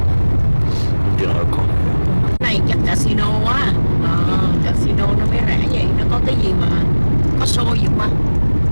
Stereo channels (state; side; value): inverted; both; correlation -1.00